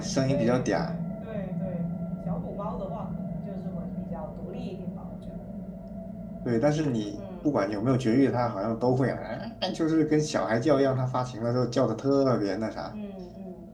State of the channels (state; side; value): identical; both; correlation 1.00